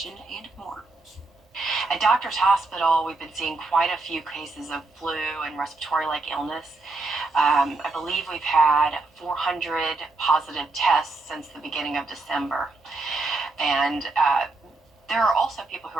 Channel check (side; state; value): left; quieter; 3.4 dB